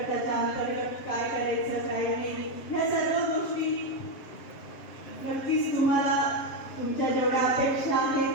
अंतर्गत काय करायचं काय नाही, ह्या सर्व गोष्टी नक्कीच तुम्हाला तुमच्या जेवढ्या अपेक्षा आहेत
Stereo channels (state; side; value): late; right; 7.4 ms